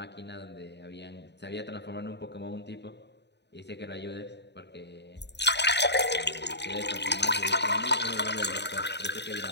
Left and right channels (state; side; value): late; right; 0.50 ms